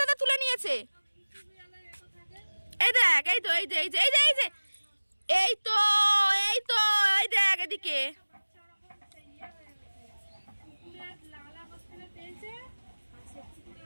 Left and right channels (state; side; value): inverted; both; correlation -1.00